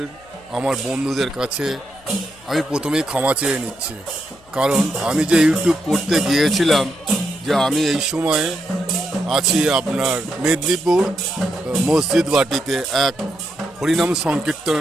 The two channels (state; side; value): noise; left; hum, 28 dB below the sound